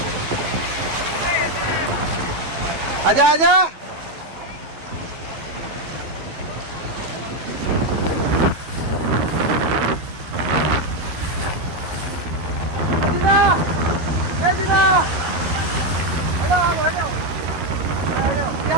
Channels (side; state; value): left; late; 12 ms